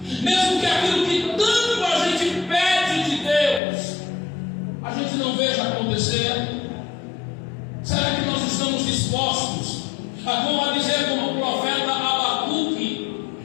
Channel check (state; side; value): drops out; right; at 3.6 s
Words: mesmo que aquilo que tanto a gente pede de Deus, a gente não veja acontecer? Será que nós estamos dispostos a dizer como o profeta Abacuque,